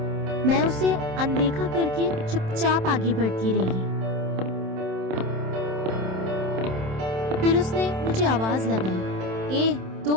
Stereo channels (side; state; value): left; late; 27 ms